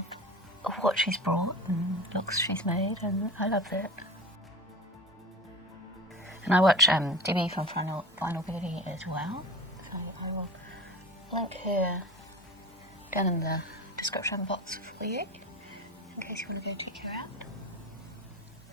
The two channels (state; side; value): normal; both; correlation 0.33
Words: what she's brought and looks she's made, and I love that. And I watch Debbie from Final Beauty as well, so I will link her down in the description box for you, in case you want to go check her out.